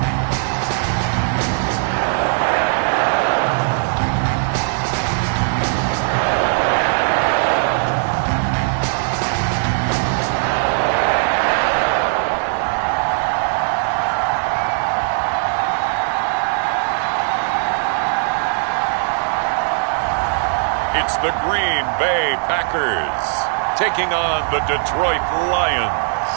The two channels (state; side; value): silent; left; digital silence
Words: It's the Green Bay Packers taking on the Detroit Lions.